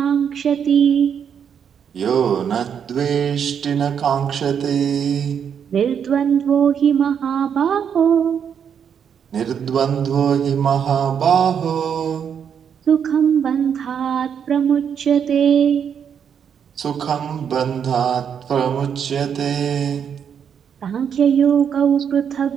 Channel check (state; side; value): quieter; left; 7.8 dB